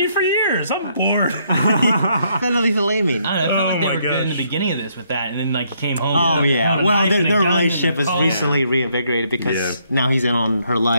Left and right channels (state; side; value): inverted; both; correlation -0.71